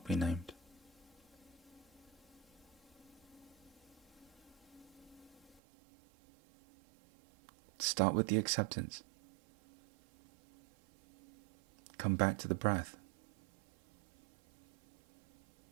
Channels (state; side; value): drops out; left; at 5.6 s